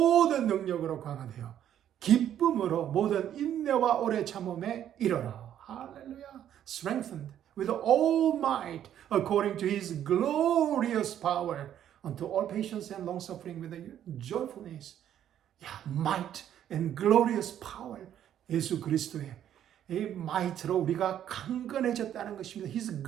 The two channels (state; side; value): quieter; left; 10.5 dB